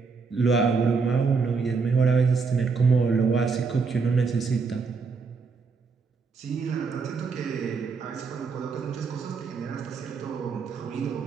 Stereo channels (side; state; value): left; quieter; 4.9 dB